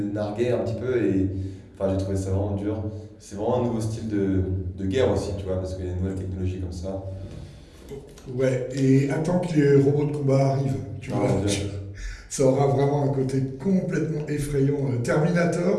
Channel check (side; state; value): both; identical; correlation 1.00